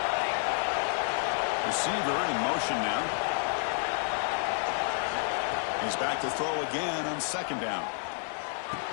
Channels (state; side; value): silent; right; 58 dB below the other